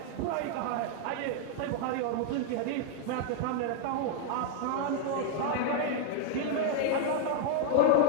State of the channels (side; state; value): both; different; correlation -0.01